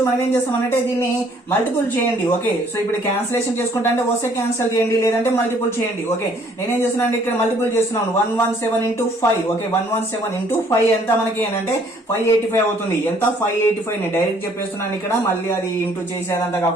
మనం ఏం చేస్తామంటే దీన్ని మల్టిపుల్ చేయండి. ఓకే, సో ఇప్పుడు క్యాన్సిలేషన్ చేసుకుంటా అంటే వస్తే క్యాన్సిల్ చేయండి, లేదంటే మల్టిపుల్ చేయండి. ఓకే, నేనేం చేస్తున్నాను ఇక్కడ మల్టిపుల్ చేస్తున్నాను. 117 into 5. ఓకే, 117 into 5 ఎంత మనకి అంటే 585 అవుతుంది. ఎంత 585 ని డైరెక్ట్ చెప్పేస్తున్నాను ఇక్కడ, మళ్ళీ అది ఇంటూ చేసేదంతా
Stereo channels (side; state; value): both; normal; correlation 0.61